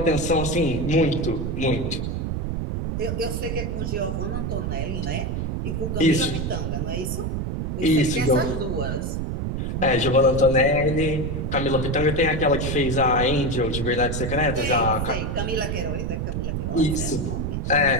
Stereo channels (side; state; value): right; noise; rumble, 2 dB below the sound